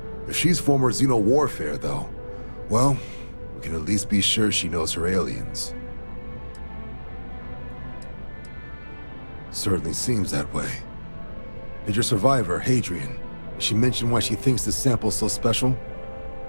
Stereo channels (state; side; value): inverted; both; correlation -1.00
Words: If she's former Xeno warfare, though, well, we can at least be sure she knows her aliens. Certainly seems that way. Did your survivor, Hadrian, did she mention why she thinks this sample's so special?